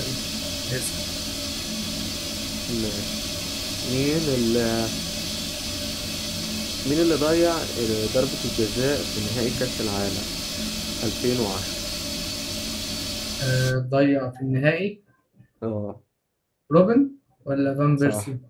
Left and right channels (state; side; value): identical; both; correlation 1.00